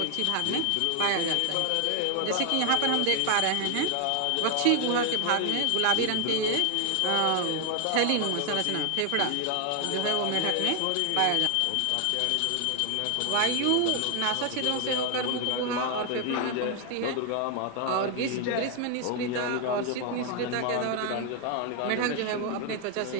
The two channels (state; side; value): different; both; correlation 0.00